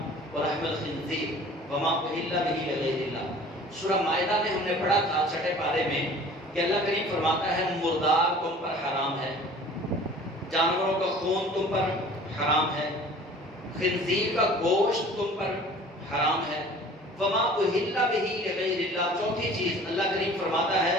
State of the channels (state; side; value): normal; both; correlation 0.46